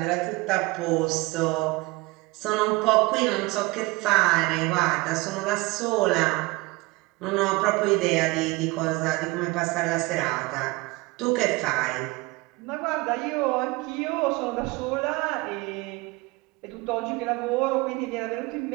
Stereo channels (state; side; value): quieter; left; 23.2 dB